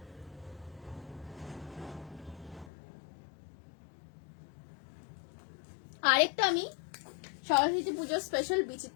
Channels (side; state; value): right; drops out; at 2.7 s